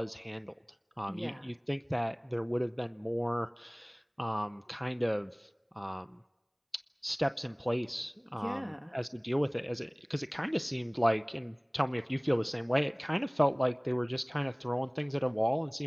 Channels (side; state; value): both; identical; correlation 1.00